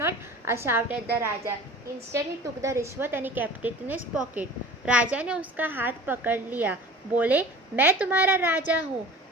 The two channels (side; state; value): both; normal; correlation 0.41